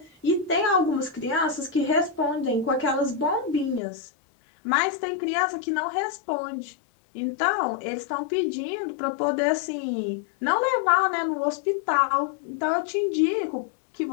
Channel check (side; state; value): right; drops out; at 3.8 s